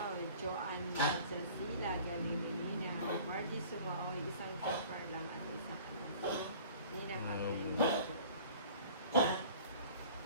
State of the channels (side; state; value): both; inverted; correlation -0.47